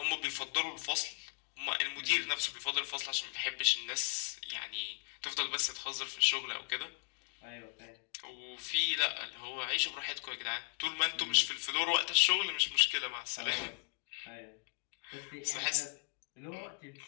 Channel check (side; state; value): right; quieter; 37.6 dB